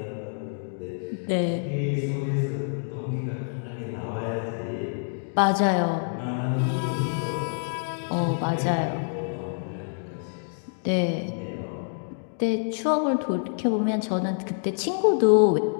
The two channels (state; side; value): silent; right; digital silence